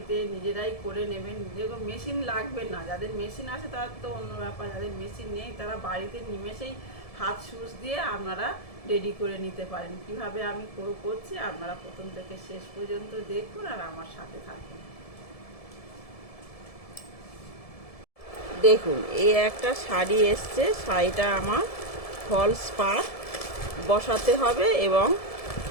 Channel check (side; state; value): right; late; 1.7 ms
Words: নিজেরাই করে নেবেন, যেরকম মেশিন লাগবে না, যাদের মেশিন আছে তার তো অন্য ব্যাপার, যাদের মেশিন নেই তারা বাড়িতে নিমেষেই হাত সুচ দিয়ে আপনারা রেডি করে নিতে পারেন। কিভাবে আমি করছি আপনারা প্রথম থেকে শেষ পর্যন্ত দেখুন আর আমার সাথে থাকুন। দেখুন, এই একটা শাড়ি এসছে, শাড়িটা আমার ফলস পার বসাতে হবে এবং